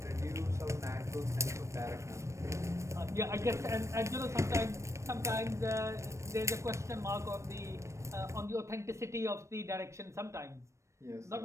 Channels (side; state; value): left; late; 0.14 ms